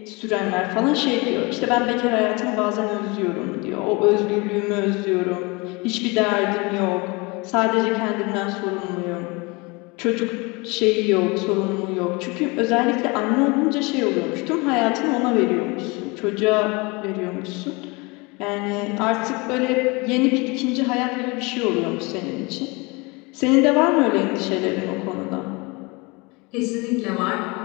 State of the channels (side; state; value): right; quieter; 26.7 dB